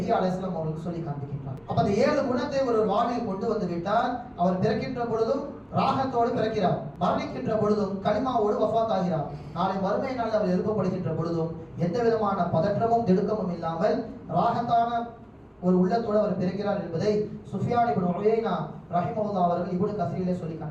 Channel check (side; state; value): both; identical; correlation 1.00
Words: அலைஹிஸ்ஸலாம் அவர்களுக்கு சொல்லி காண்பிக்கின்றார். அப்ப அந்த 7 குணத்தை ஒரு வாழ்வில் கொண்டு வந்து விட்டால் அவர் பிறக்கின்ற பொழுதும் ராகத்தோடு பிறக்கிறார், மரணிக்கின்ற பொழுதும் கலிமாவோடு வஃபாத் ஆகிறார். நாளை மறுமை நாளில் அவர் எழுப்பப்படுகின்ற பொழுதும் எந்த விதமான பதற்றமும் திடுக்கமும் இல்லாமல் ராகத்தான ஒரு உள்ளத்தோடு அவர் பிறக்கிறார் என்பதை சுஃபியான் இப்னு உயைனா ரஹிமஹுல்லாஹ் அவர்கள் இப்னு கஸீரிலே சொல்லி